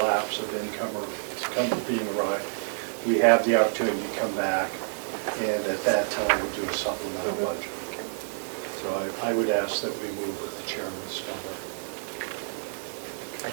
of income or being arrived, we have the opportunity to come back and at that time do a supplemental budget. So I would ask that we move with the chairman's number. I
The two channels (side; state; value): left; silent; digital silence